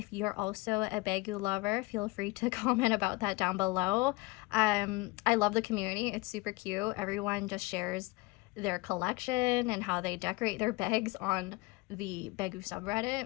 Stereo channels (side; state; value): right; quieter; 22.7 dB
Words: you're also a bagu lover, feel free to comment about that down below. I love the community. It's super cute. Everyone just shares their collection and how they decorate their bags on the bagu